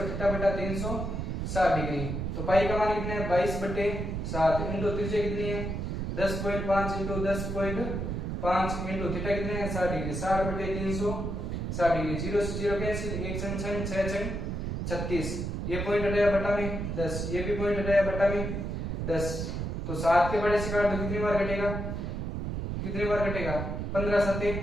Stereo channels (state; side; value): noise; right; rumble, 3 dB below the sound